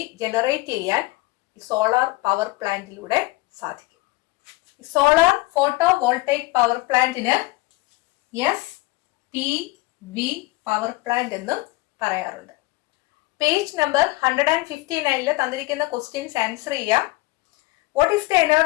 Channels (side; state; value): right; quieter; 21.4 dB